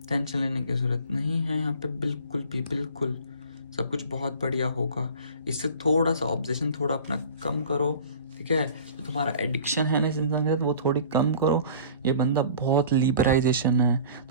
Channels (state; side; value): inverted; both; correlation -0.44